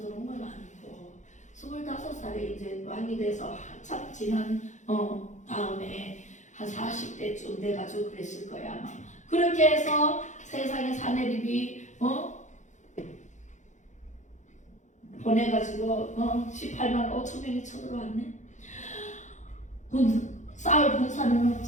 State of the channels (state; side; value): late; right; 0.35 ms